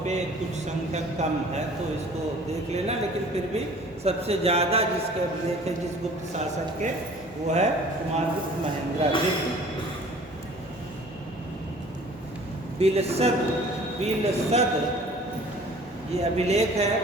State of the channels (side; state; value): both; normal; correlation 0.49